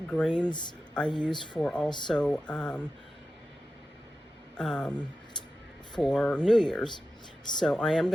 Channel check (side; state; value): both; normal; correlation 0.93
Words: grains I use for also for New Year's. So I am